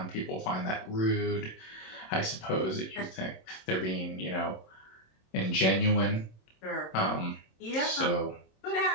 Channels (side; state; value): right; late; 26 ms